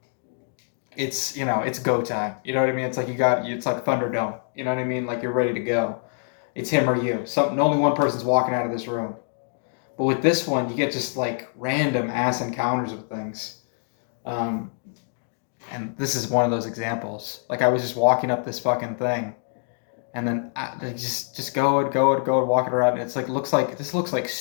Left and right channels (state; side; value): silent; right; 62 dB below the other